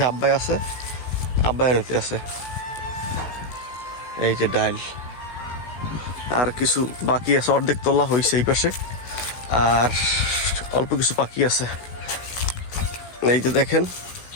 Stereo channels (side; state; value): right; late; 16 ms